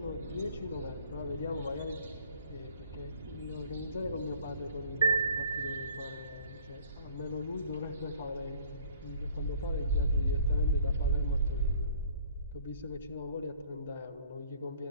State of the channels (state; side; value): inverted; both; correlation -0.55